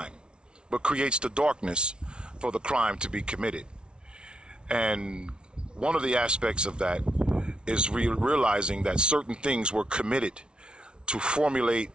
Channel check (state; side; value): late; left; 0.056 ms